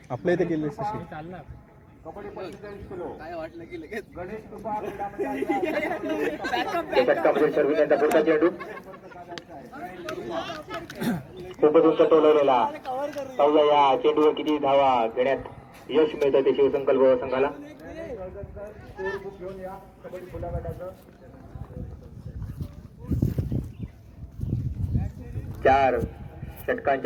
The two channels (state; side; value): identical; both; correlation 1.00